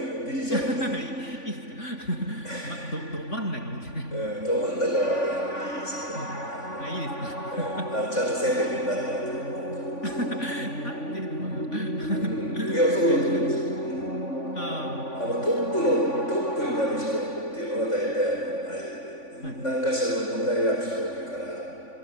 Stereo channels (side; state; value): right; late; 3.5 ms